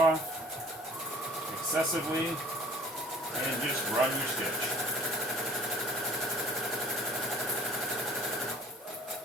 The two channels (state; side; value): normal; both; correlation 0.50